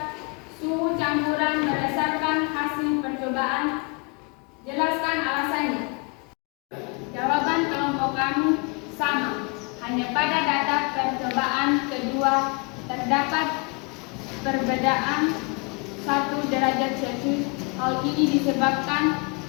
terdapat perbedaan 1 derajat Celcius. Hal ini disebabkan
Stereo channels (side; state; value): right; quieter; 32.6 dB